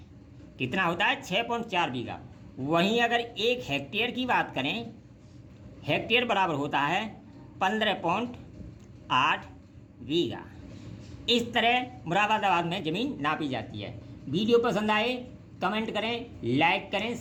कितना होता है, 6.4 बीघा। वहीं अगर 1 हेक्टेयर की बात करें, हेक्टेयर बराबर होता है 15.8 बीघा। इस तरह मुरादाबाद में ज़मीन नापी जाती है। वीडियो पसंद आए कमेंट करें, लाइक करें,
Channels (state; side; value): identical; both; correlation 1.00